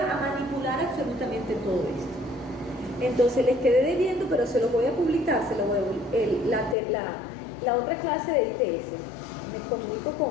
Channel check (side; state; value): right; drops out; at 6.8 s